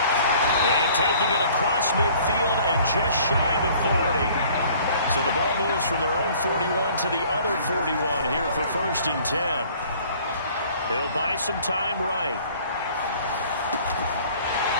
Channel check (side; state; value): both; inverted; correlation -0.54